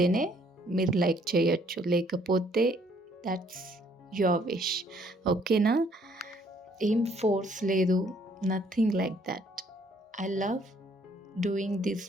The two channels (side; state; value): both; normal; correlation 0.64